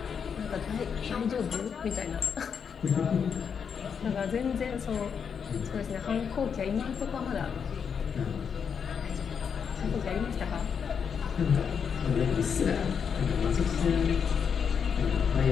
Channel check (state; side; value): quieter; right; 6.8 dB